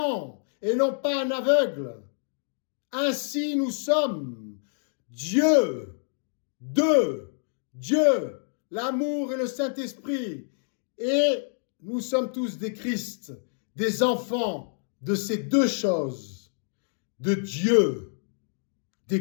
et non pas un aveugle. Ainsi nous sommes. Dieu, Dieu, l'amour et le Saint-Esprit. Et nous sommes tous des Christ, des enfants de ces deux choses, de Dieu,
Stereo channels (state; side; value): silent; right; digital silence